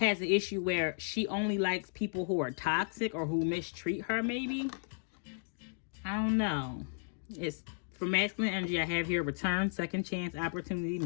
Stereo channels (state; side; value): silent; right; digital silence